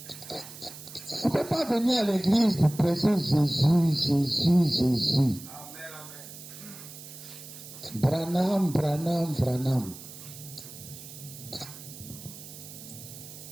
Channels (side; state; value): right; noise; hiss, 15 dB below the sound